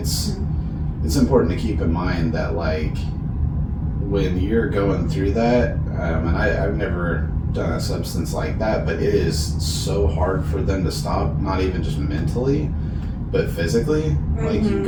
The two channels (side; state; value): both; identical; correlation 1.00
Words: important to keep in mind that, like, when you're going through that, and I've never done a substance like that, but it is so hard for them to stop, not even just mentally, but physically. Like, you